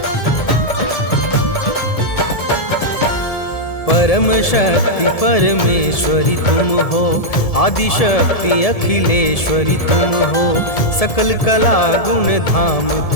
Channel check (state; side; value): late; right; 1.7 ms